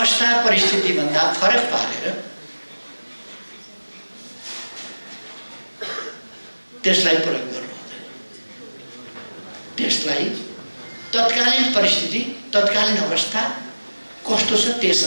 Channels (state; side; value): inverted; both; correlation -1.00